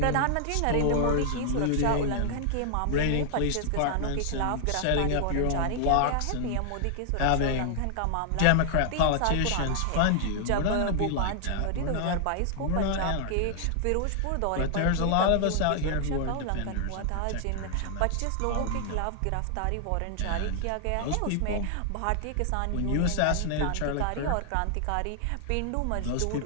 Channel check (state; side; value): different; both; correlation 0.00